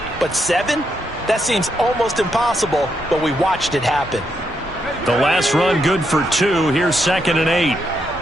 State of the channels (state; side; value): normal; both; correlation 0.80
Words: But 7? That seems almost impossible, but we watched it happen. The last run good for 2. Here's 2nd and 8.